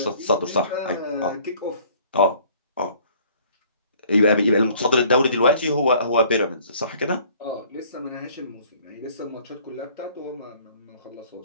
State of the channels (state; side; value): inverted; both; correlation -0.55